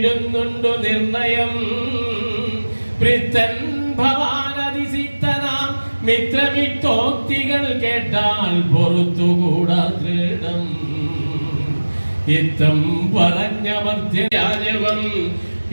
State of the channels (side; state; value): both; inverted; correlation -1.00